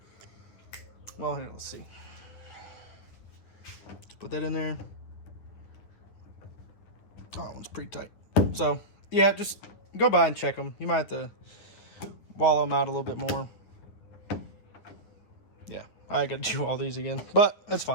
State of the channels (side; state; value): right; late; 9.8 ms